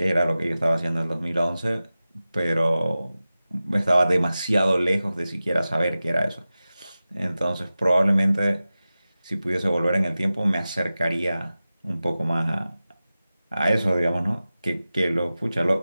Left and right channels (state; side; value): inverted; both; correlation -0.95